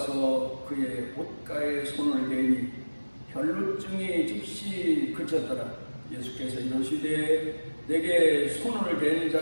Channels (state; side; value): inverted; both; correlation -1.00